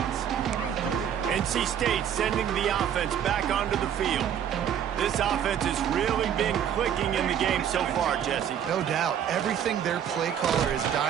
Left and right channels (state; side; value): quieter; left; 9.2 dB